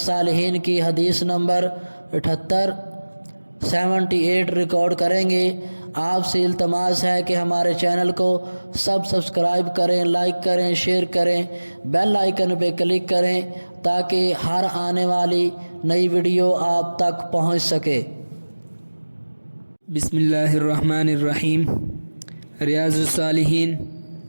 کی حدیث نمبر 78 ریکارڈ کریں گے۔ آپ سے التماس ہے کہ ہمارے چینل کو سبسکرائب کریں، لائک کریں، شیئر کریں، بیل آئیکن پہ کلک کریں تاکہ ہر آنے والی نئی ویڈیو آپ تک پہنچ سکے۔ بسم اللہ الرحمن الرحیم۔ ریاض الصالحین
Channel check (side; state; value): both; inverted; correlation -1.00